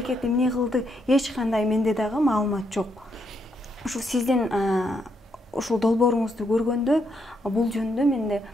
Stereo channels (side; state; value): both; normal; correlation 0.77